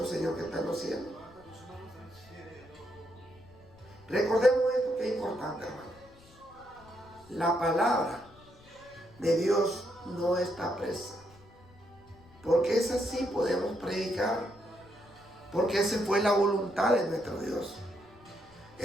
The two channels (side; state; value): left; noise; rumble, 25 dB below the sound